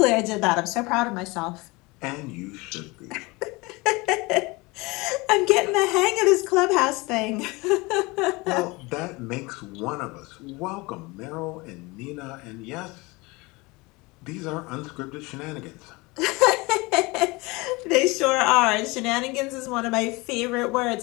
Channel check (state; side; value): quieter; right; 24.4 dB